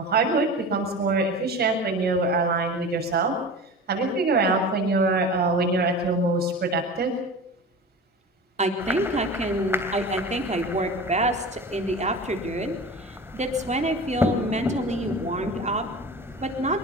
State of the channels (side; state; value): both; normal; correlation 0.33